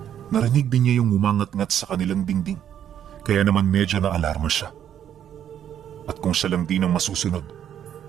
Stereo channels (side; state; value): left; quieter; 9.8 dB